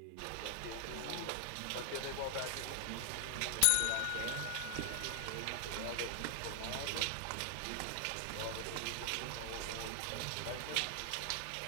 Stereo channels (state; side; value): different; both; correlation 0.00